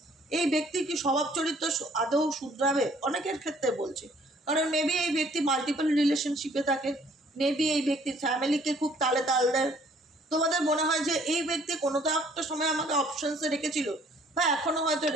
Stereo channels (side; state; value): both; normal; correlation 0.60